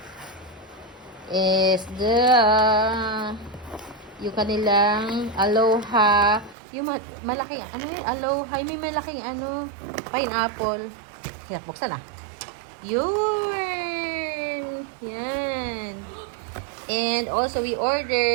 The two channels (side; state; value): left; drops out; at 6.6 s